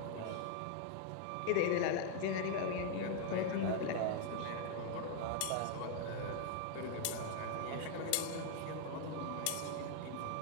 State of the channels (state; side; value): different; both; correlation 0.00